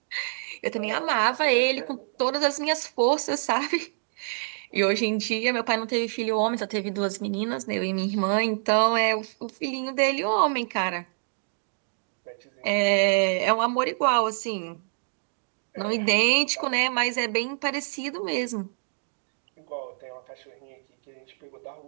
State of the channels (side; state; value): left; silent; digital silence